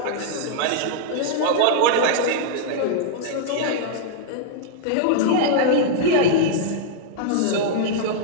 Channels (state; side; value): different; both; correlation -0.01